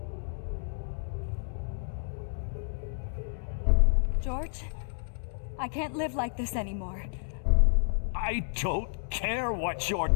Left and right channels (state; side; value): silent; right; 57 dB below the other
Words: George, I can't live like this anymore. I don't care what your